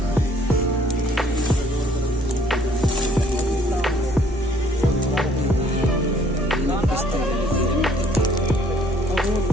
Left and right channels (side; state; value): both; normal; correlation 0.61